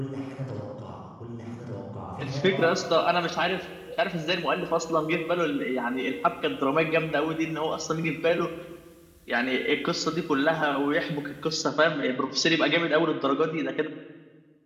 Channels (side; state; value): both; identical; correlation 1.00